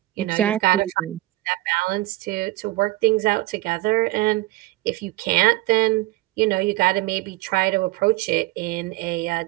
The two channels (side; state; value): left; quieter; 18.9 dB